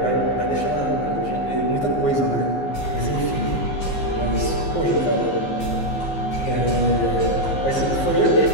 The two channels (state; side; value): late; right; 15 ms